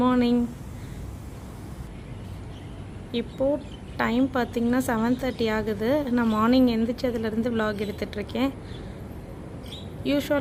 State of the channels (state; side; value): identical; both; correlation 1.00